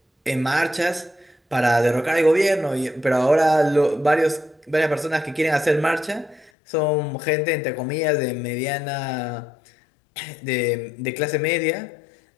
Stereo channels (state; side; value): drops out; right; at 6.5 s